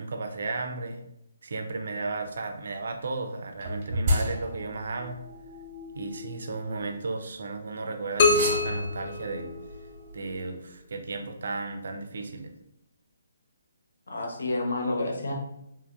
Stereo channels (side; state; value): both; inverted; correlation -0.61